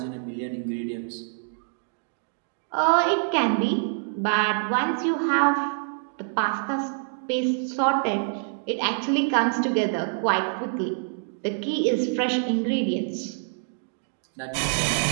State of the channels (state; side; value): silent; left; digital silence